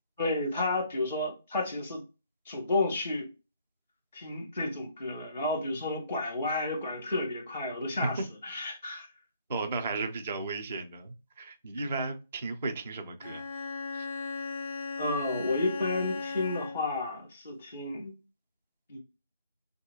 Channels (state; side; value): inverted; both; correlation -0.64